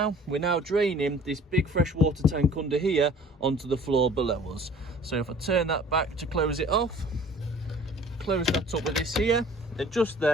we're now draining this big fresh water tank under here onto the floor below us. So if I turn that back to close it off, close that up with this here, and just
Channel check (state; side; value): normal; both; correlation 0.50